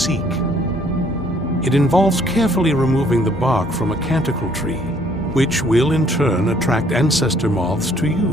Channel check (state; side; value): normal; both; correlation 0.62